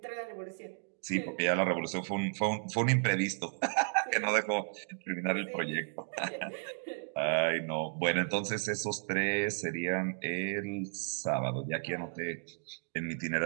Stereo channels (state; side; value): silent; left; digital silence